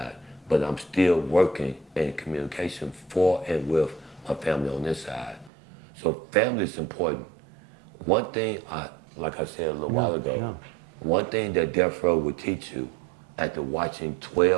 but I'm still working in communication for and with my family on this side. So family is important. One thing, like I said a little while ago, one thing that death row would teach you after watching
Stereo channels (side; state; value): left; drops out; at 5.5 s